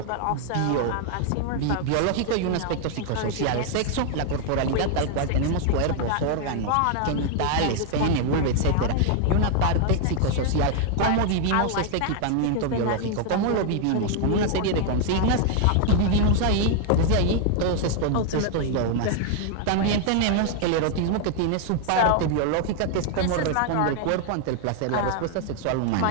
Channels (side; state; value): both; different; correlation 0.00